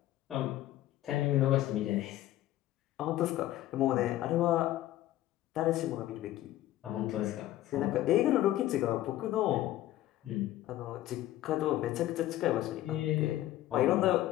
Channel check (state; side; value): quieter; right; 14.4 dB